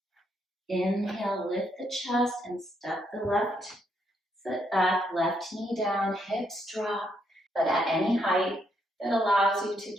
Inhale, lift the chest and step the left foot back, left knee down, hips drop, but at any height that allows you to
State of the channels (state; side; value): normal; both; correlation 0.75